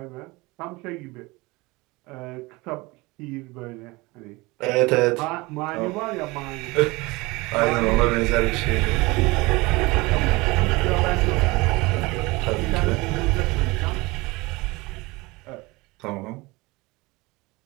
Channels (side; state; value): left; quieter; 23.2 dB